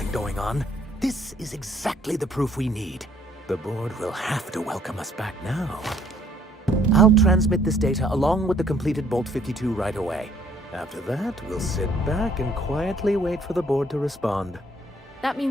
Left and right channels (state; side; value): normal; both; correlation 0.62